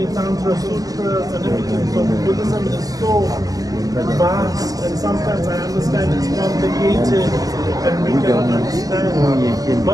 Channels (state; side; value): late; left; 0.17 ms